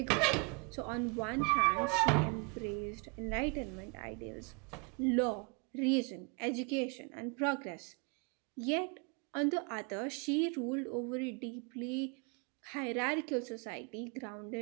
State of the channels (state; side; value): quieter; left; 33.0 dB